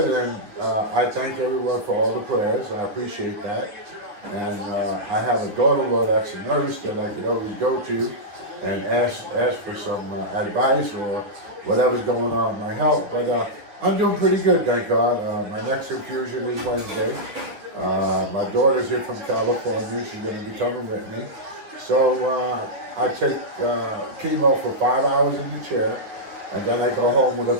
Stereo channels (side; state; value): left; late; 9.4 ms